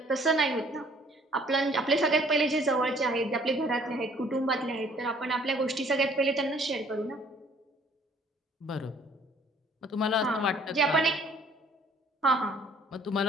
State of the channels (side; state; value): both; normal; correlation 0.58